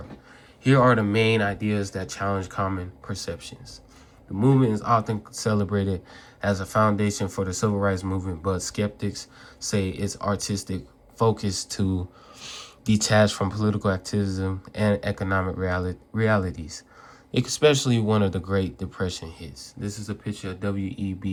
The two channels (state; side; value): identical; both; correlation 1.00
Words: Here are the main ideas that challenge common perceptions. The movement is often celebrated as a foundation for the civil rights movement, but skeptics say its artistic focus to detach from political activism and economic realities, especially one of the Great Depression hits. This is a picture of